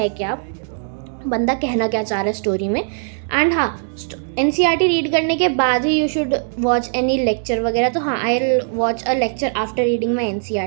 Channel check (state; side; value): silent; left; digital silence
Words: क्या, बंदा कहना क्या चाह रहा है स्टोरी में। एंड हाँ, NCERT रीड करने के बाद ही you should watch any lecture वगैरह। तो हाँ, I will watch a lecture after reading my